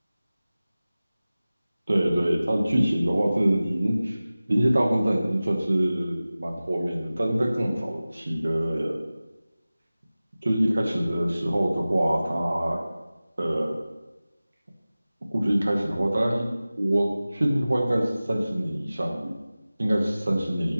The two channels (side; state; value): both; inverted; correlation -0.97